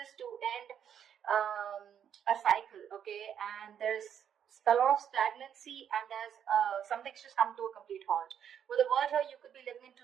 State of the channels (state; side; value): quieter; left; 8.8 dB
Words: to end a cycle. Okay, and there's a lot of stagnancy, and there's something's just come to a complete halt. With the world here, you could be living in